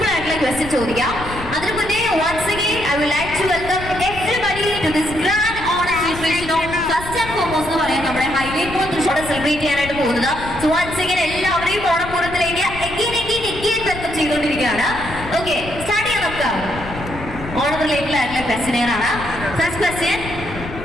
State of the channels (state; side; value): noise; left; rumble, 11 dB below the sound